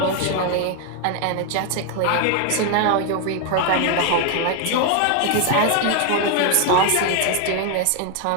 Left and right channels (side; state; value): both; different; correlation 0.00